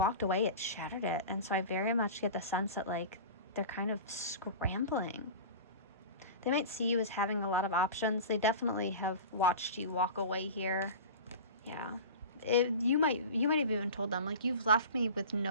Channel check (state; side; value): inverted; both; correlation -0.33